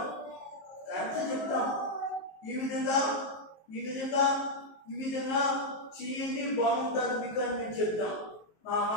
కరెక్ట్ చెప్తాం. ఈ విధంగా చేయండి, బాగుంటుంది మీకు అని మేము చెప్తాం. మా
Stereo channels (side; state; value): right; late; 19 ms